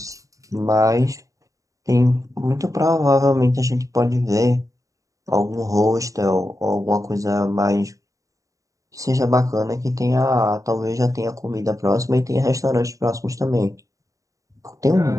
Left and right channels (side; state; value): left; late; 0.16 ms